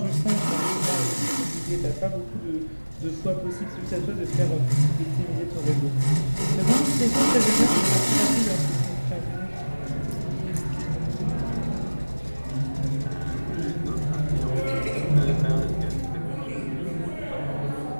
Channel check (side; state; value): both; inverted; correlation -1.00